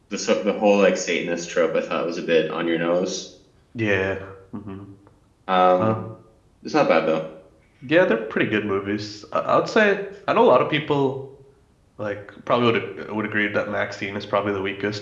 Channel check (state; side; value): identical; both; correlation 1.00